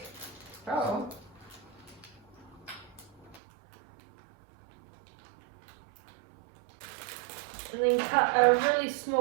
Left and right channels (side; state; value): left; drops out; at 3.4 s